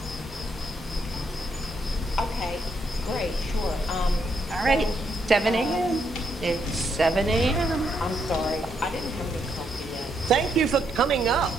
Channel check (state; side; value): normal; both; correlation 0.77